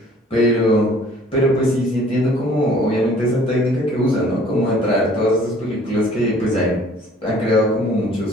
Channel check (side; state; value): both; normal; correlation 0.54